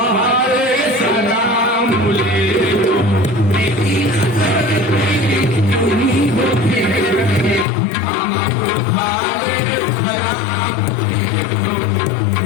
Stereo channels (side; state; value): right; drops out; at 7.7 s